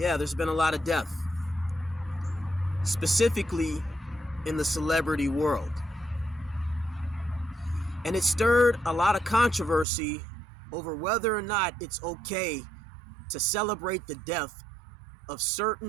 there's been a lot of death. Specifically in the celebrity world. And it stirred a lot of controversy over whether or not it's okay to celebrate the death of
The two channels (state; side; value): drops out; left; at 9.9 s